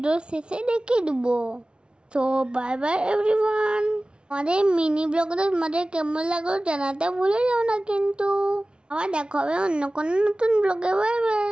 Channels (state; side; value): late; left; 0.056 ms